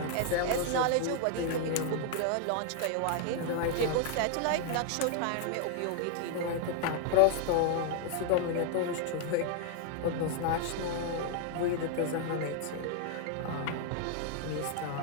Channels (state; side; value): different; both; correlation 0.00